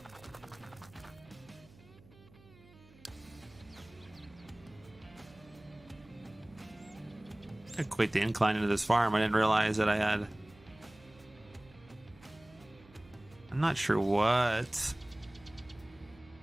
I quit the incline into this farm. I didn't realize that I had. I'm not sure what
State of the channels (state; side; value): noise; right; hum, 24 dB below the sound